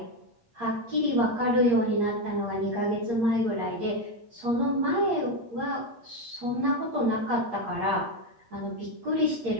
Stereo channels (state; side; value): late; left; 8.6 ms